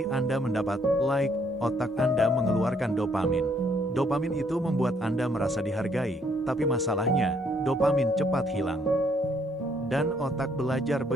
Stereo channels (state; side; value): normal; both; correlation 0.68